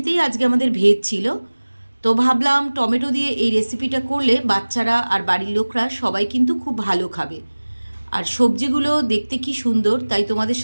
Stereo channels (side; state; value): both; inverted; correlation -1.00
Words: আজকে আমাদের ভেজ ছিল। তো ভাবলাম টমেটো দিয়ে এই রেসিপিটা করলে বাচ্চারা আর বাড়ির লোকরা সবাই কিন্তু খুব ভালো খাবে। আর সবজিগুলো দেখতে কি সুন্দর, তাই তোমাদের